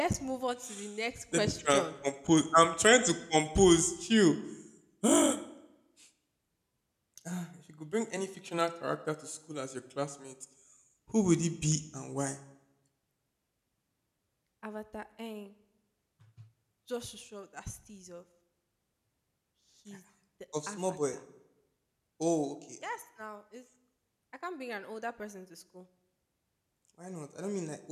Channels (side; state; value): both; identical; correlation 1.00